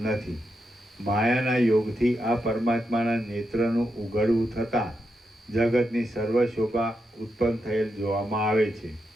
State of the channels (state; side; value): normal; both; correlation 0.85